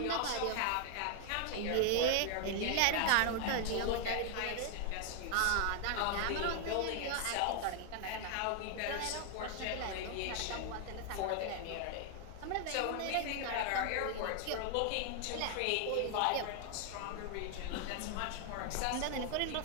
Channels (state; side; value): different; both; correlation 0.00